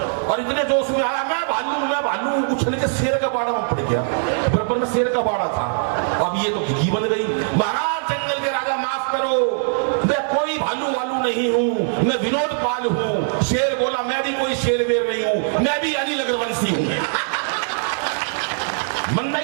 और इतने जोश में आया मैं भालू उछल के शेर का बाड़ा में पड़ गया। बराबर में शेर का बाड़ा था, अब ये तो घी बन गई। महाराज जंगल के राजा माफ करो, मैं कोई भालू वालू नहीं हूँ, मैं विनोद पाल हूँ। शेर बोला मैं भी कोई शेर वेर नहीं हूँ, मैं भी अनिल अग्रवंशी हूँ। मंदा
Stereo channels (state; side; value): silent; left; 65 dB below the other